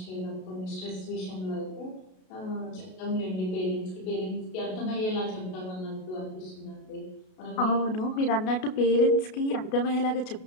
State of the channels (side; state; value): right; late; 32 ms